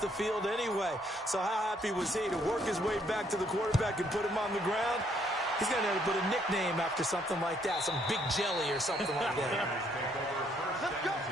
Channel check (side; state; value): both; normal; correlation 0.69